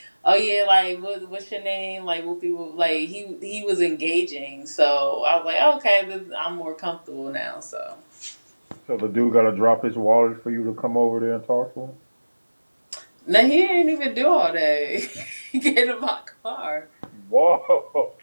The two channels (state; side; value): inverted; both; correlation -1.00